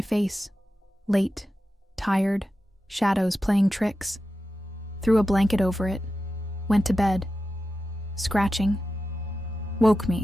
late, tired, shadows playing tricks. Threw a blanket over it, went to bed. Scratching. Woke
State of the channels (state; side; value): normal; both; correlation 0.92